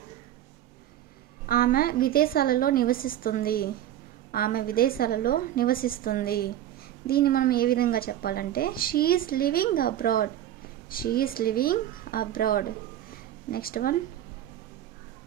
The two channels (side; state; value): left; quieter; 12.0 dB